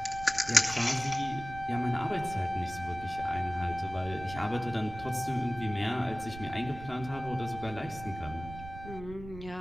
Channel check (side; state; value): right; noise; rumble, 13 dB below the sound